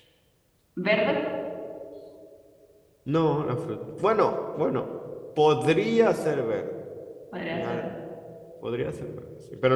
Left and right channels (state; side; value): identical; both; correlation 1.00